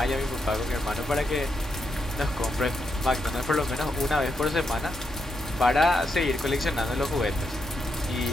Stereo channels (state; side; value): normal; both; correlation 0.82